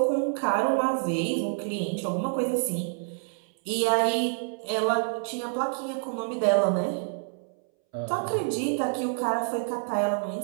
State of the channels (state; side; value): silent; left; 60 dB below the other